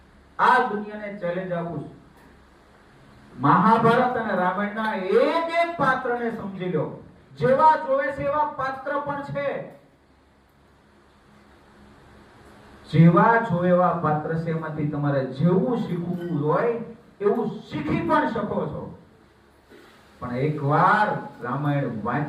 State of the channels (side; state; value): both; identical; correlation 1.00